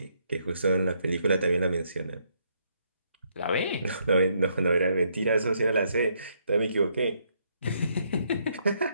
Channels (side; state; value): both; inverted; correlation -0.73